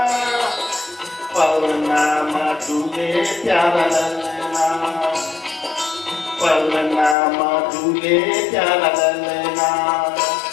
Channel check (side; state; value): right; drops out; at 7.2 s